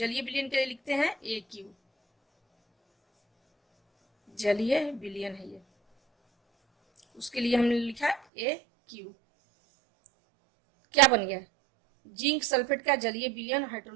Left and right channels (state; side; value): drops out; left; at 8.2 s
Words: विलयन के लिए लिखते हैं AQ, जलीय विलयन है ये, उसके लिए हमने लिखा AQ। क्या बन गया, जिंक सल्फेट का जलीय विलयन